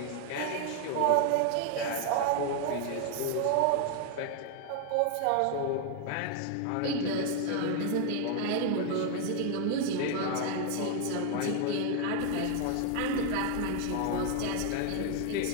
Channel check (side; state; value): both; different; correlation 0.00